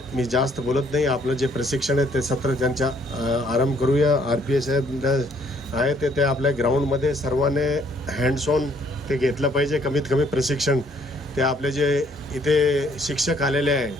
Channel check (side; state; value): both; normal; correlation 0.64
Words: मी जास्त बोलत नाही, आपलं जे प्रशिक्षण आहे ते सत्र त्यांच्या आरंभ करूया. RPA साहेब आहे ते आपल्या ग्राउंडमध्ये सर्वांनी हँड्स ऑन ते घेतलं पाहिजे. कमीत कमी प्रशिक्षण ते आपले जे इथे शिक्षक आलेले आहे,